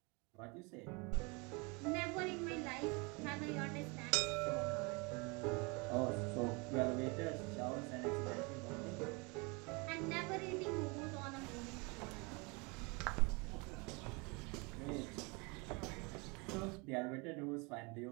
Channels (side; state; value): left; quieter; 29.3 dB